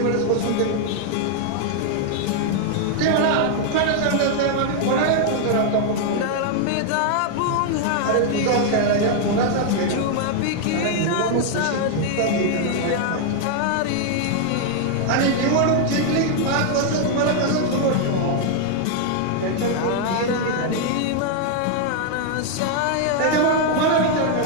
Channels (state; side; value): different; both; correlation 0.00